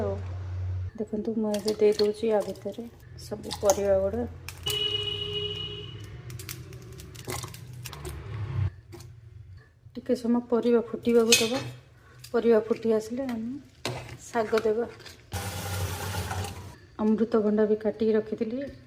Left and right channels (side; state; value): both; identical; correlation 1.00